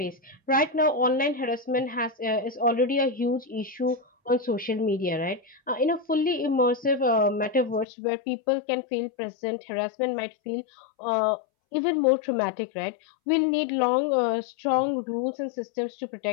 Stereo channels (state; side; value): drops out; right; at 7.9 s